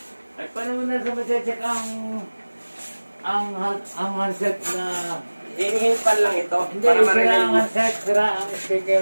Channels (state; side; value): inverted; both; correlation -1.00